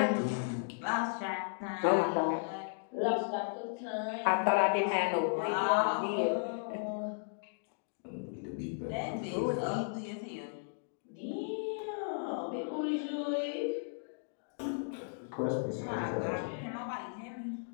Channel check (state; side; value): silent; right; digital silence